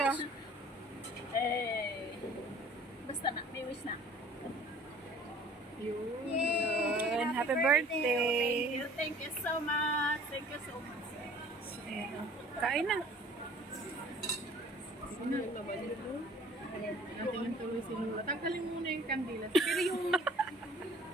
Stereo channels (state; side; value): normal; both; correlation 0.51